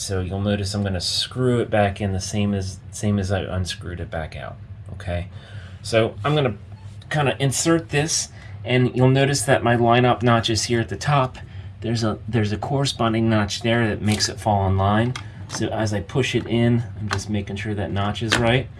you'll notice I'm going to screw it back in the same as I unscrewed it back out. Okay, so I'm going to kind of insert this, and you'll notice that my line-up notch is here at the top. There's a corresponding notch there that makes it fall in line. So as I push it in, I'm just making sure that notch is right.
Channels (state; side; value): identical; both; correlation 1.00